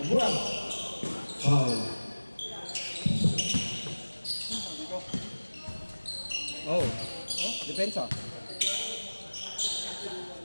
Pagwag. Foul. Oh, depensa.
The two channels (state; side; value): inverted; both; correlation -1.00